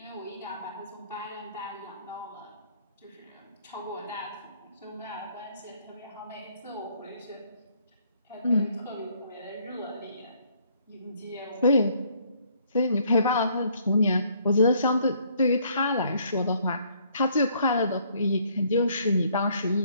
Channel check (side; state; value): both; inverted; correlation -0.65